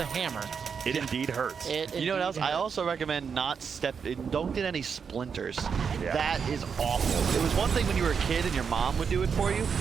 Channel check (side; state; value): left; quieter; 6.4 dB